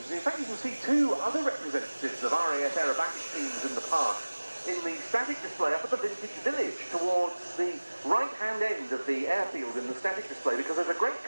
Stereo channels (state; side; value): inverted; both; correlation -1.00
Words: In fact, you can see two other representatives of RAF aerobatic teams in the past in the static display up at the Vintage Village towards the right-hand end of the airfield in the static display, because there's a great